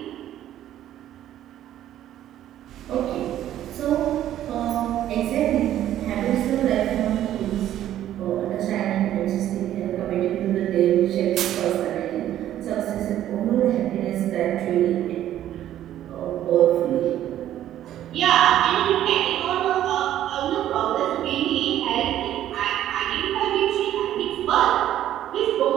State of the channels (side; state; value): left; quieter; 12.1 dB